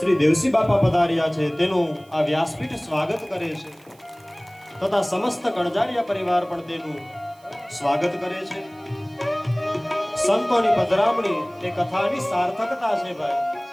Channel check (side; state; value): right; noise; hiss, 30 dB below the sound